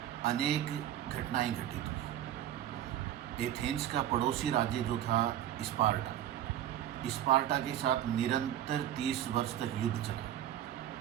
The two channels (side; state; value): left; quieter; 11.7 dB